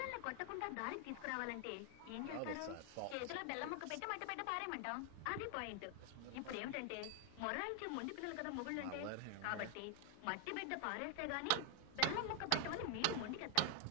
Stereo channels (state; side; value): different; both; correlation 0.00